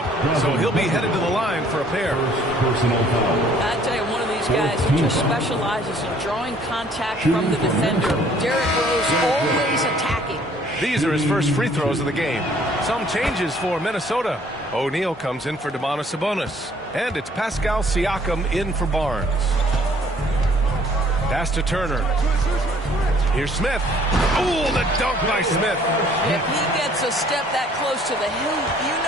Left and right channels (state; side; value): normal; both; correlation 0.59